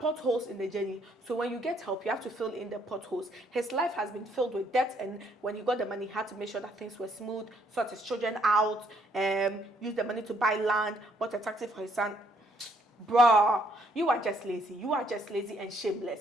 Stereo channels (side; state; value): both; normal; correlation 0.68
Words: in the journey. So when you get help, you have to fill in the potholes. His life has been filled with debt, and when he got the money, he had to make sure that things were smooth, sort his children out, use the money to buy land, bought a taxi for his son. Bruh, you are just lazy. You are just lazy and